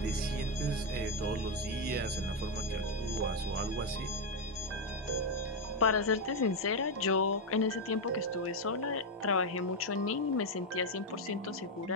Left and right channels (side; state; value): both; normal; correlation 0.04